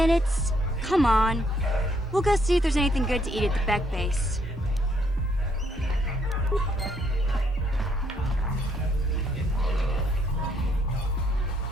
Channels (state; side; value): normal; both; correlation 0.71